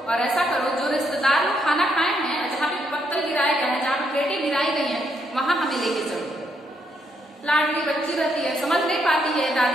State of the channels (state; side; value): normal; both; correlation 0.75